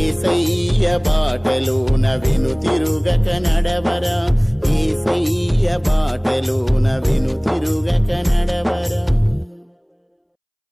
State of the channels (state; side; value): identical; both; correlation 1.00